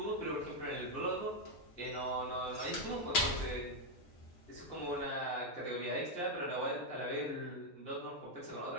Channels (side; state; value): both; normal; correlation 0.02